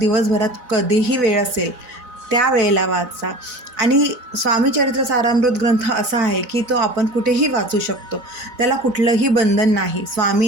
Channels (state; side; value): late; left; 4.0 ms